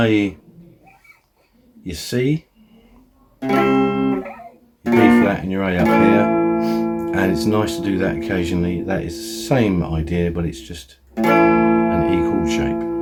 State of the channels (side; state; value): both; identical; correlation 1.00